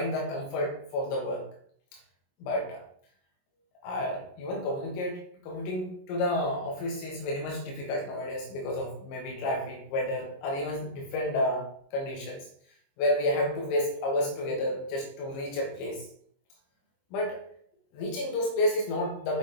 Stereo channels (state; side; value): late; right; 22 ms